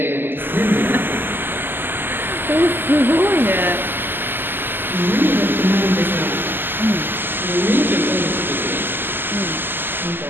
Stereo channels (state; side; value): late; left; 0.095 ms